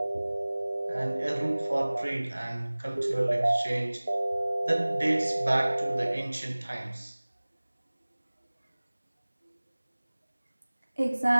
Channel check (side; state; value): both; inverted; correlation -1.00